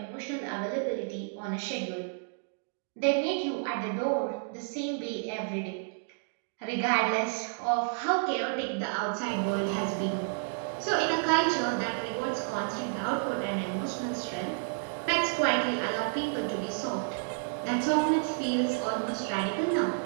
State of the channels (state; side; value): silent; left; digital silence